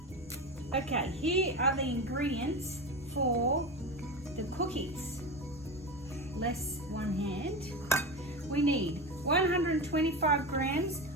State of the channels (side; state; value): both; normal; correlation 0.23